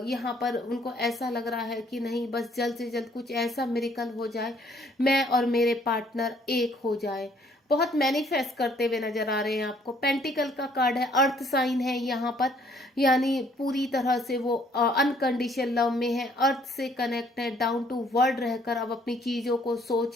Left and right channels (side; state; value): both; normal; correlation 0.63